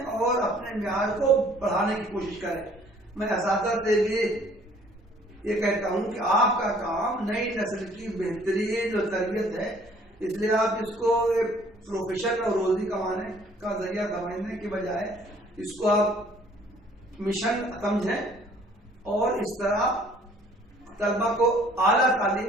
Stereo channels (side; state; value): both; normal; correlation 0.57